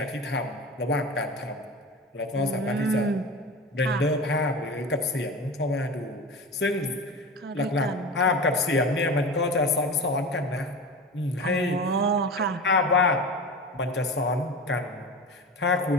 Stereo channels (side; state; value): both; normal; correlation 0.29